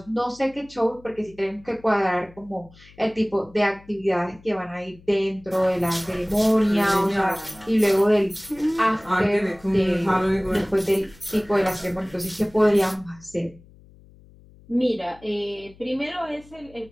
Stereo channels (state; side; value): noise; left; hum, 25 dB below the sound